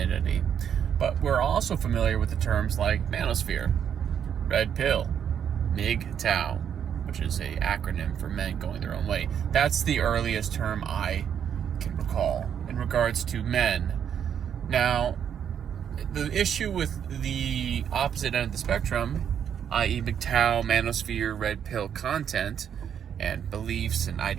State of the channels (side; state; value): left; quieter; 8.5 dB